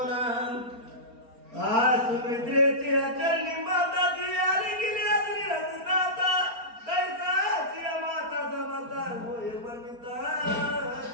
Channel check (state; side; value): late; left; 4.3 ms